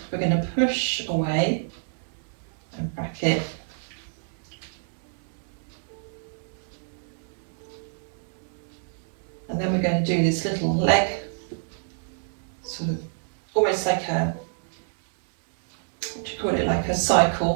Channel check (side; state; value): left; silent; digital silence